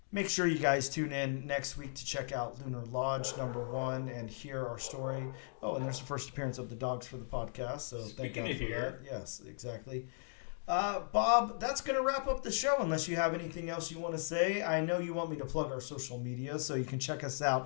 make sure you guys tune in next week to check out Lunar Lodge number 1 and hear our story. Oh, and there's the first appearance of the dogs for the podcast. So speaking of here, yes, exactly. Bob, that's going to wrap up the show unless you have anything else you want to say. I know you want me to plug our social media, so you can check us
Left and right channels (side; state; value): right; silent; digital silence